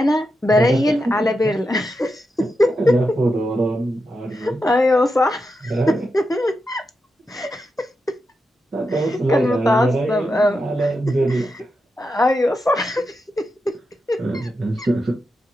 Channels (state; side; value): normal; both; correlation 0.87